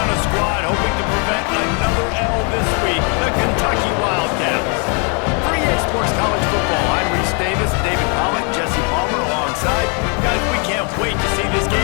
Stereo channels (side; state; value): right; quieter; 36.6 dB